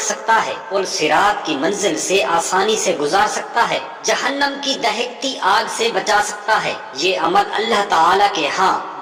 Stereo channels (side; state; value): both; identical; correlation 1.00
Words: سکتا ہے، پل صراط کی منزل سے آسانی سے گزار سکتا ہے، جہنم کی دہکتی آگ سے بچا سکتا ہے۔ یہ عمل اللہ تعالیٰ کے ہاں